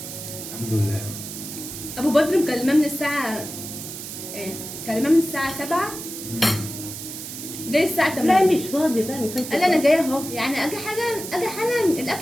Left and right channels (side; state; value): right; noise; hiss, 9 dB below the sound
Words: الحمد لله. ابو بدر مكلماه من الساعة ايه؟ مكلماه من الساعة 7 جاي الساعة 8. لا مش فاضي بقى ما كانش قال لي انا فاضي. جايه اهو، يعني اجي حالا